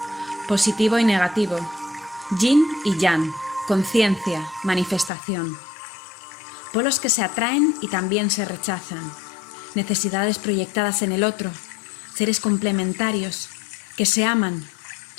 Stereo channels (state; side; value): drops out; right; at 5.1 s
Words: Positivo y negativo. Yin y yang. Conciencia, manifestación. Polos que se atraen y también se rechazan. Necesidades proyectadas en el otro. Seres complementarios que se aman,